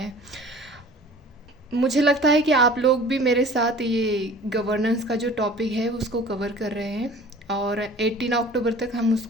मुझे लगता है कि आप लोग भी मेरे साथ ये गवर्नेंस का जो टॉपिक है उसको कवर कर रहे हैं और 18 अक्टूबर तक हम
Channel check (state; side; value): normal; both; correlation 0.46